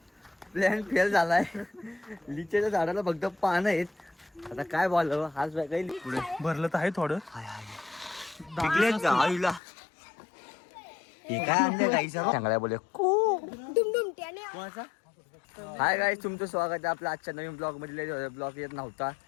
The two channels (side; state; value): right; drops out; at 9.6 s